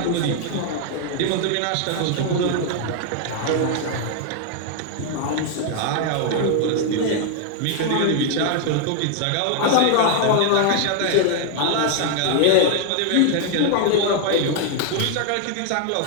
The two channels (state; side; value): different; both; correlation 0.00